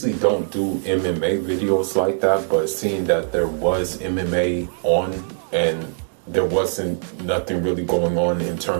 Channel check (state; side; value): silent; left; 65 dB below the other